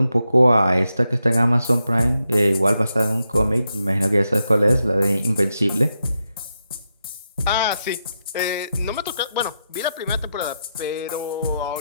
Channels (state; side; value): inverted; both; correlation -0.85